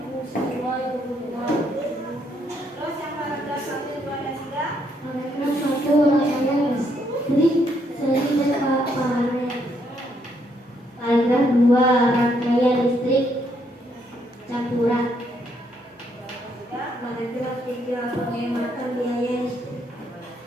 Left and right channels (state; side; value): normal; both; correlation 0.73